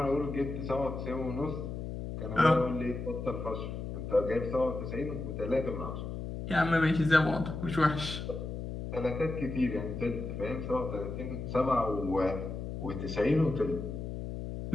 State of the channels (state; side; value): noise; left; hum, 6 dB below the sound